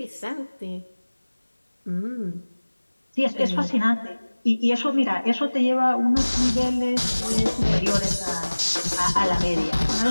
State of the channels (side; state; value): both; inverted; correlation -1.00